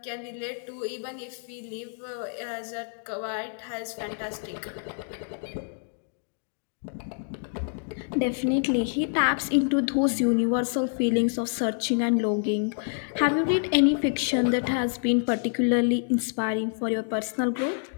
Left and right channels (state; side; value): silent; right; digital silence